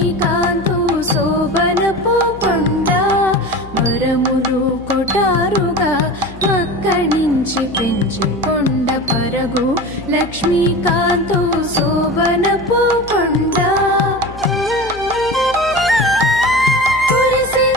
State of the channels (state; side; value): noise; left; hum, 17 dB below the sound